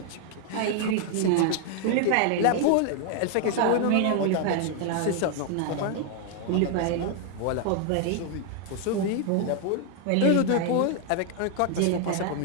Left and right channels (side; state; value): both; different; correlation 0.00